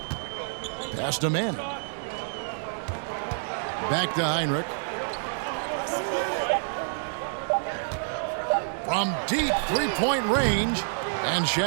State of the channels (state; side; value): silent; left; digital silence